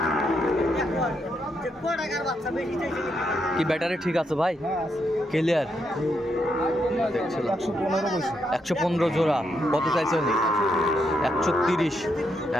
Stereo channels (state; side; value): normal; both; correlation 0.79